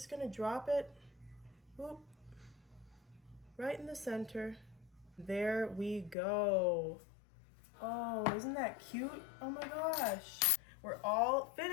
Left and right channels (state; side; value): drops out; right; at 6.2 s